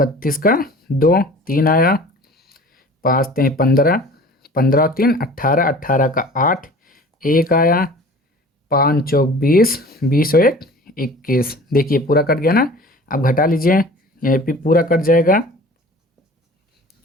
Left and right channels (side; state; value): both; normal; correlation 0.43